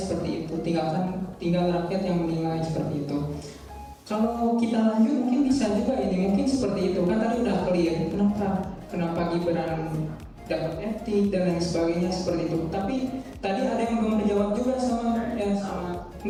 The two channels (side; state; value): both; identical; correlation 1.00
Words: itu. Tinggal rakyat yang menilai seperti itu. Kalau kita lanjut mungkin bisa juga ini mungkin seperti itu kan tadi udah clear kenapa Gibran dapat etik dan lain sebagainya seperti itu. Tapi tadi ada yang belum dijawab juga sama